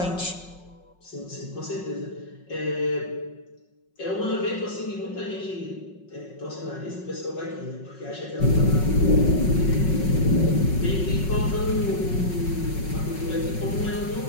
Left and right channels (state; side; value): late; right; 5.4 ms